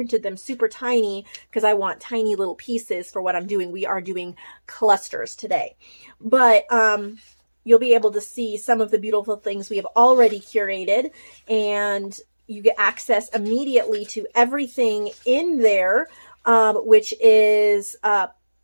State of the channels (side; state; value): both; inverted; correlation -1.00